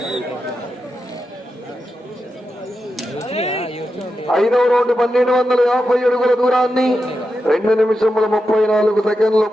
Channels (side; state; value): both; normal; correlation 0.89